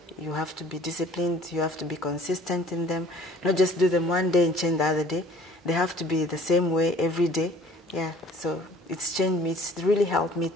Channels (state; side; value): normal; both; correlation 0.52